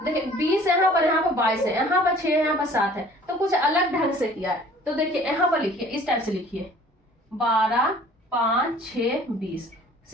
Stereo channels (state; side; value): normal; both; correlation 0.51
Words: 20 यहाँ पर 22 है, यहाँ पर 6 यहाँ पर 7 है, तो कुछ अलग ढंग से किया है। तो देखिए यहाँ पर लिखिए, इस टाइप से लिखिए 12 5 6 20,